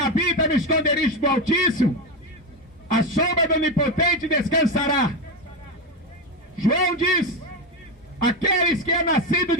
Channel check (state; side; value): normal; both; correlation 0.13